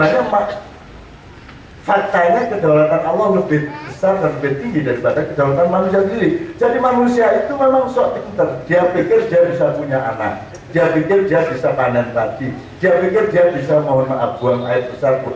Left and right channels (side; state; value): both; identical; correlation 1.00